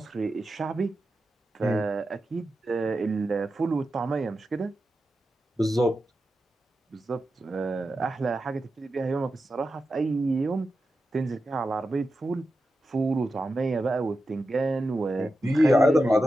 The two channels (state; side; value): normal; both; correlation 0.90